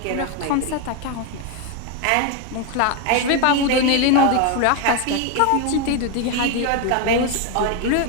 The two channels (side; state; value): both; different; correlation 0.01